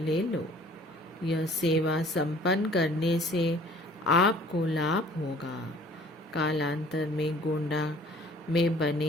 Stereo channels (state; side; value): normal; both; correlation 0.52